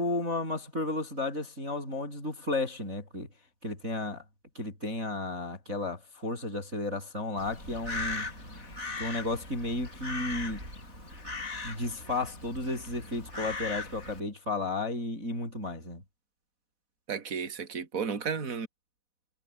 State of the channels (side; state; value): left; late; 4.1 ms